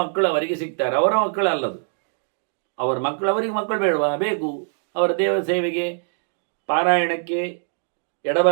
ಮಕ್ಕಳು ಅವರಿಗೆ ಸಿಗ್ತಾರೆ. ಅವರ ಮಕ್ಕಳು ಅಲ್ಲದು, ಅವರ ಮಕ್ಕಳು ಅವರಿಗೆ ಮಕ್ಕಳು ಬೇಡವಾ? ಬೇಕು. ಅವರ ದೇವ ಸೇವೆಗೆ, ಪಾರಾಯಣಕ್ಕೆ,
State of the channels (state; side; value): silent; left; digital silence